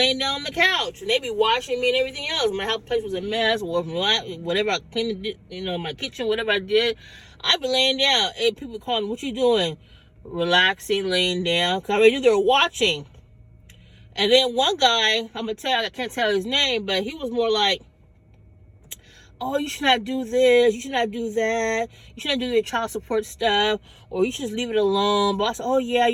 down on the couch, and they'd be watching me and everything else. My house place was a mess, or whatever I cleaned, my kitchen, whatever I did, I'd be laying down. And people would call me, "What you doing?" Relaxing, laying down, because I already knew they were watching. And then one guy, I can't tell his name, but he was more like, "Oh, you should not do this, you should not do that, you should not do your child support stuff, or you should just leave it alone." But I said, "Oh yeah,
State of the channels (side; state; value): both; identical; correlation 1.00